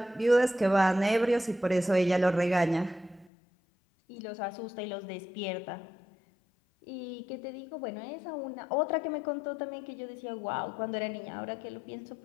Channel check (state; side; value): drops out; right; at 3.3 s